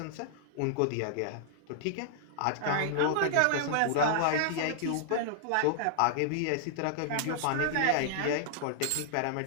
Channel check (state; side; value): different; both; correlation -0.01